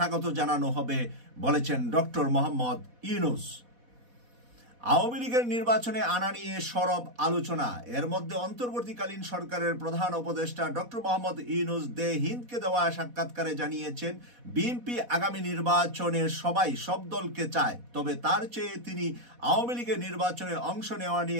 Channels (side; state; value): left; late; 4.1 ms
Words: জানানো হবে বলেছেন ডক্টর মোহাম্মদ ইউনূস। আওয়ামী লীগের নির্বাচনে আনা নিয়ে সরব আলোচনা। এর মধ্যে অন্তর্বর্তীকালীন সরকারের প্রধান উপদেষ্টা ডক্টর মোহাম্মদ ইউনূস দে হিন্দকে দেওয়া সাক্ষাৎকারে জানিয়েছেন, বিএনপি আগামী নির্বাচনে সব দলকে চায়, তবে তার চেয়ে তিনি আওয়ামী লীগের নির্বাচনে অংশ নেওয়া